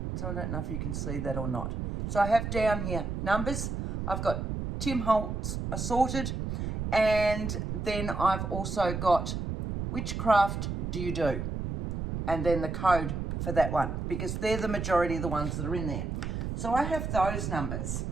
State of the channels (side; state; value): right; noise; rumble, 3 dB below the sound